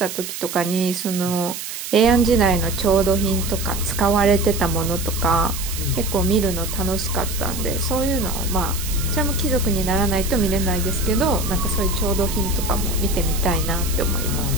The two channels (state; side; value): noise; right; hiss, 8 dB below the sound